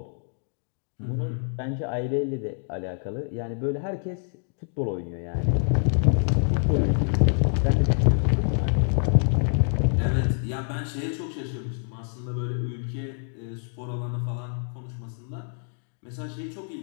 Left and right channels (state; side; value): silent; right; 61 dB below the other